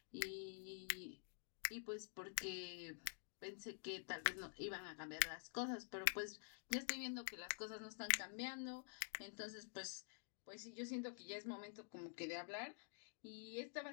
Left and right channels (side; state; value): right; silent; digital silence